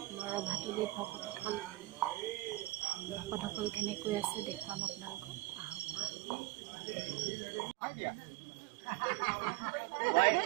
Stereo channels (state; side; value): drops out; left; at 6.1 s